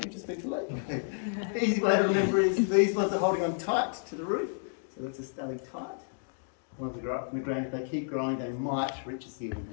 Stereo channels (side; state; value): right; silent; digital silence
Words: just speak late. Easy way to remember is these ones are holding on tight to the roof, so that's a stalactite. Ones that grow up from the ground, if they keep growing, they might reach the ceiling.